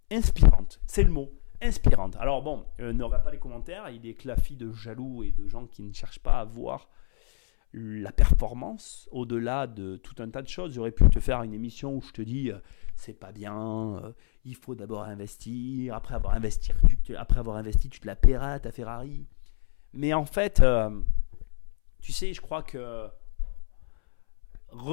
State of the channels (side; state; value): right; silent; 60 dB below the other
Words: inspirante, c'est le mot. Inspirante. Alors bon, n'aura pas les commentaires, il est claffi de jaloux et de gens qui ne cherchent pas à voir la performance au-delà de tout un tas de choses. J'aurais pu te faire une émission où je te dis c'est pas bien, il faut d'abord investir, après avoir investi, tu te la paieras ta Ferrari. Mais en fait, tu sais, je crois que